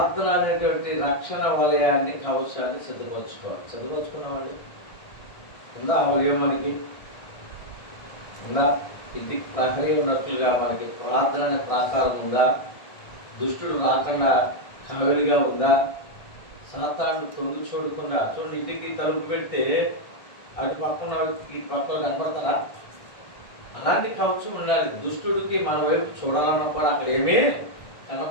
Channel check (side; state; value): right; late; 1.6 ms